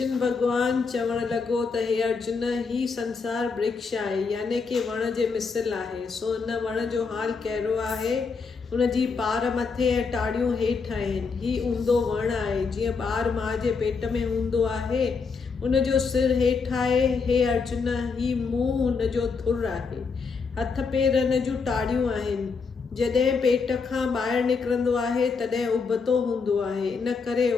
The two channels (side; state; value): right; quieter; 5.0 dB